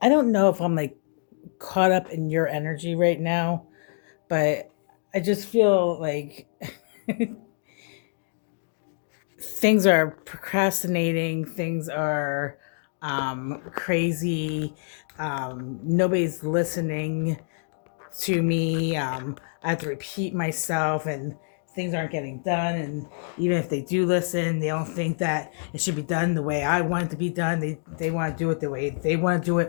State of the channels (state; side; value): silent; right; digital silence